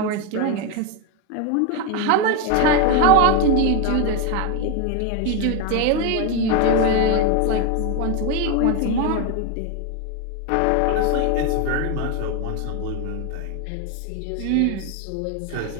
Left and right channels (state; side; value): different; both; correlation 0.02